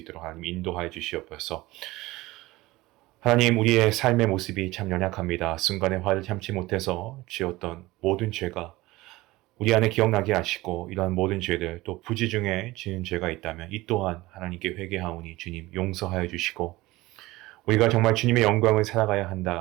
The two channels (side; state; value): left; quieter; 19.3 dB